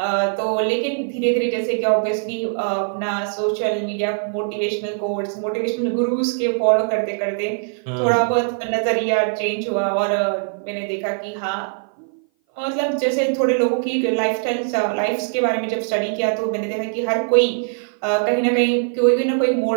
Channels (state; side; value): silent; left; 58 dB below the other